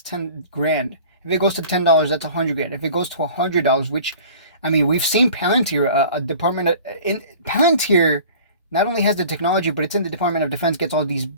10 grand. If it goes to $10, that's 100 grand. If it goes to $100, which, I mean, we've seen Palantir, Palantir not only has the technology, but it's in the Department of Defense, gets all these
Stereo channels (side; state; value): both; inverted; correlation -0.45